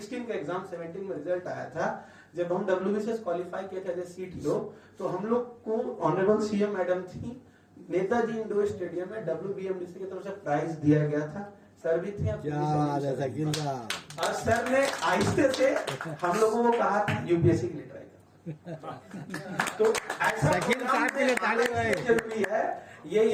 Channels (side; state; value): both; identical; correlation 1.00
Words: का एग्जाम 17 में रिजल्ट आया था, जब हम डब्ल्यूबीसीएस क्वालिफाई किए थे एज सीटीओ, तो हम लोग को ऑनरेबल सीएम मैडम थी, नेताजी इंडोर स्टेडियम में डब्ल्यूबीएमडीसी की तरफ से प्राइज दिया गया था। सर भी थे और सर ने आहिस्ते से हम लोगों को कहा था यूपीएससी के लिए ट्राई करो। तो ऐसा जरूरी है, ये